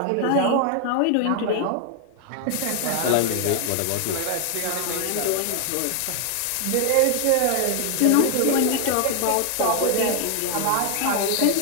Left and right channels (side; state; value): both; different; correlation 0.00